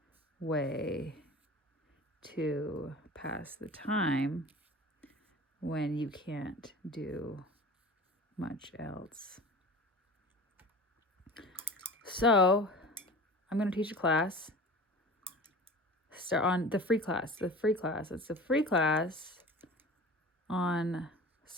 way to pass the time when you can't do much else. So I'm going to teach a class. Start on the free class. It's a free class on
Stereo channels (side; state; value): both; normal; correlation 0.38